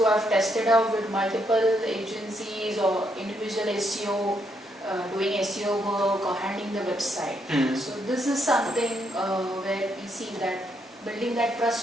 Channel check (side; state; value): both; normal; correlation 0.76